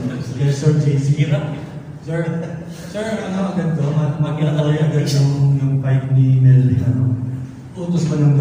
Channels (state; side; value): identical; both; correlation 1.00